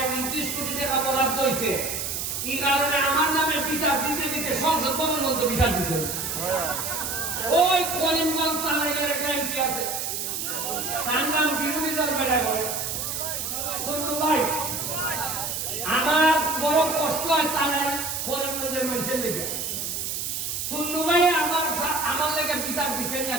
29 কোটি টাকা বরাদ্দ হয়েছে, এই কারণে আমার নামে বিচার দিতে দিতে সংসদ ভবন মধ্যে বিচার দিচ্ছে। ওই করিমগঞ্জ তালাইয়ের একটা এমপি আছে, তার নাম বিরোধী দল বেড়া করে সন্নু ভাই। আমার বড় কষ্ট হয় তারাই করিমগঞ্জের মানুষের লেগে, সন্নু ভাই আমার লেগে বিচার দিচ্ছেন না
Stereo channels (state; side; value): noise; right; hiss, 3 dB below the sound